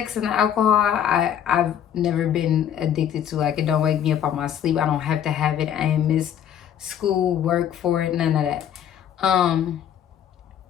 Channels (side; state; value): right; quieter; 9.6 dB